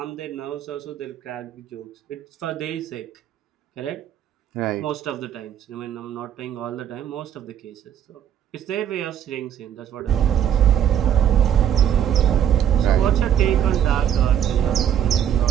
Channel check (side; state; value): left; quieter; 9.5 dB